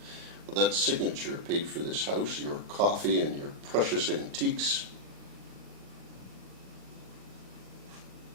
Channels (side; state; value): left; late; 40 ms